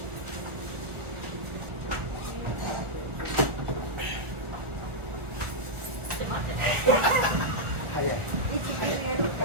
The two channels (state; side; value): late; left; 1.4 ms